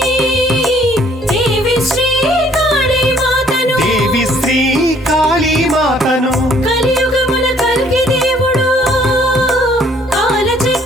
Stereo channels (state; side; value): normal; both; correlation 0.61